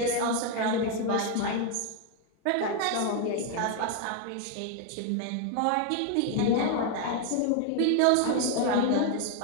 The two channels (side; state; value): both; different; correlation 0.01